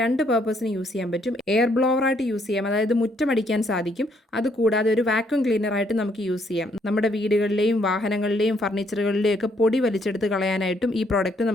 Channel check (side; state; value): both; normal; correlation 0.70